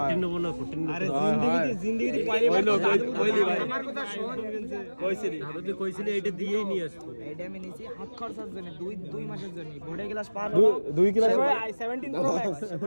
নেবো না 14 আরে জিন্দেগিতে আমার কথা শোন আমি তো কইছিলি এটা দিয়েই নিয়ে আসবো এইটা আমি নিছি হাত খরচার জন্য 2 মাসের জন্য বোর্ডে ক্লাস পার 2 ক্লাস i17 প্রো ম্যাক্স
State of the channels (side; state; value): both; inverted; correlation -1.00